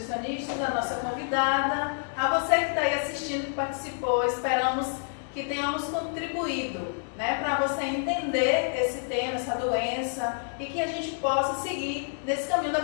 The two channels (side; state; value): right; silent; digital silence